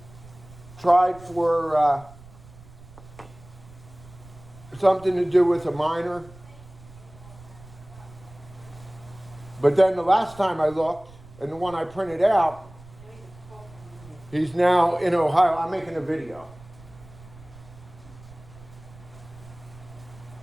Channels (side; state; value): right; noise; rumble, 21 dB below the sound